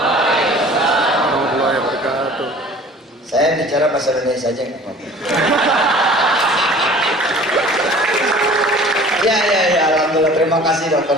wabarakatuh. Saya bicara bahasa Indonesia saja nggak apa-apa. Ya, alhamdulillah, terima kasih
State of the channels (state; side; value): normal; both; correlation 0.46